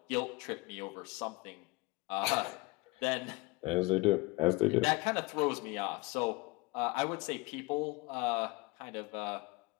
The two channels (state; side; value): quieter; right; 24.5 dB